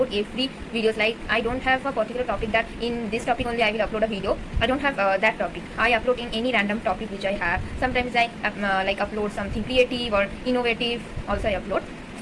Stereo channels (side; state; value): both; identical; correlation 1.00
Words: every videos. Like I don't have a particular topic that in this topic only I will upload a video. I don't have that topic. I upload in any random topic which I have. Sometimes I like upload something creative or innovative also I upload.